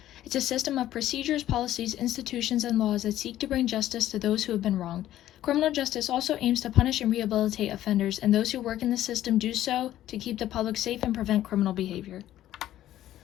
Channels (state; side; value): quieter; right; 13.0 dB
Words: It's a system of procedures, policies, institutions, and laws that seek to bring justice to those who have been wronged. Criminal justice also aims to punish and rehabilitate offenders, and those who work in the system do so to keep the public safe and prevent criminal behavior.